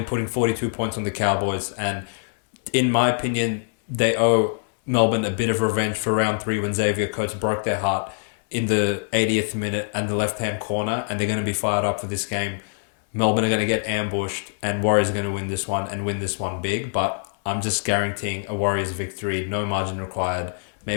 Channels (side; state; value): right; silent; 63 dB below the other